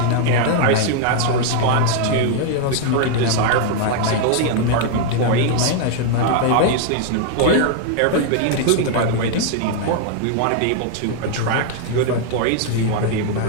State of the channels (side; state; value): both; different; correlation 0.00